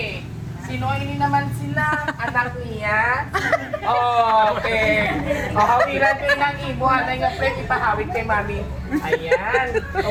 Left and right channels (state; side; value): identical; both; correlation 1.00